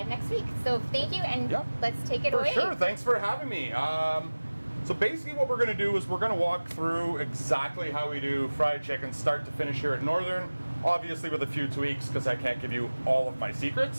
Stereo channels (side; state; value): both; inverted; correlation -1.00